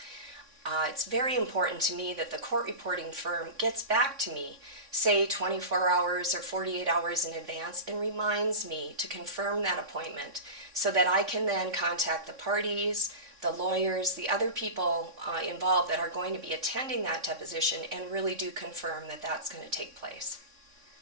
It's very important to me that the court reporting firm gets back to me, say 24 hours or 48 hours in advance, and reminds me to confirm that appointment so that I can then contact the parties, the lawyers, the other people involved that are going to be attending that deposition and really do confirm that that's going to take place.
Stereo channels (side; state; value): left; late; 3.6 ms